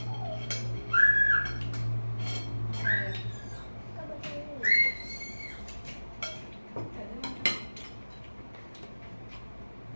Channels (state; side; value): inverted; both; correlation -1.00